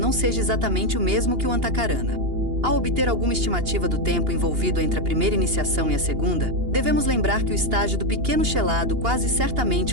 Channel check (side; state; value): left; late; 2.8 ms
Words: seja exatamente o mesmo que o Antakarana. Ao obter alguma estimativa do tempo envolvido entre a primeira iniciação e a segunda, devemos lembrar que o estágio do pequeno chelado quase